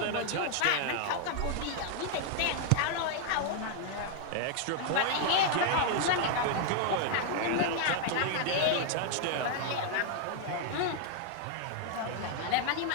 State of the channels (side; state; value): both; different; correlation 0.00